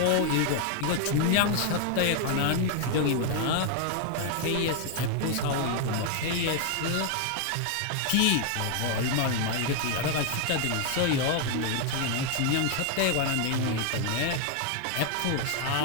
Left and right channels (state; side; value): different; both; correlation 0.00